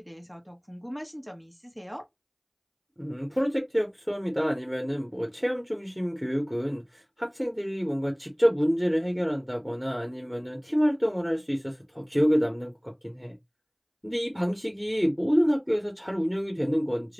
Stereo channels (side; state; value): both; identical; correlation 1.00